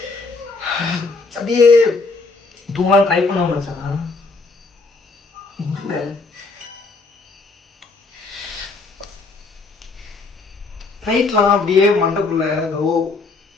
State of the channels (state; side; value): quieter; right; 3.8 dB